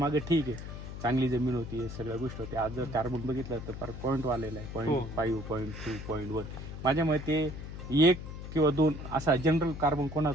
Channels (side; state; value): left; noise; hum, 9 dB below the sound